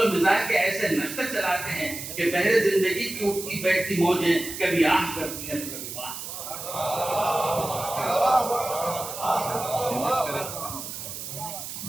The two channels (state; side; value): noise; right; hiss, 8 dB below the sound